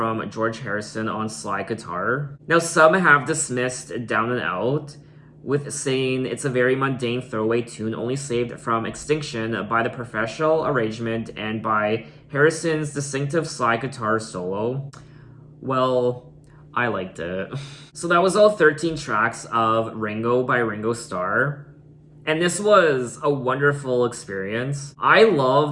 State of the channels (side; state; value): both; identical; correlation 1.00